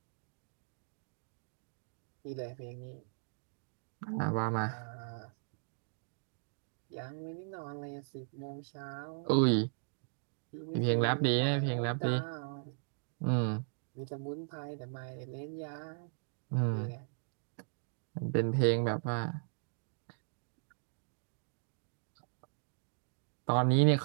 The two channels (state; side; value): silent; left; digital silence